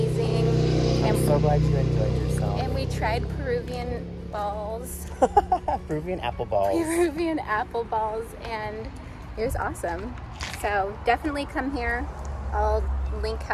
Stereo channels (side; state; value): both; identical; correlation 1.00